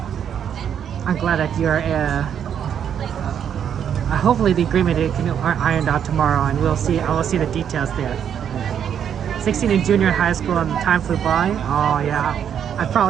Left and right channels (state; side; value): quieter; left; 8.7 dB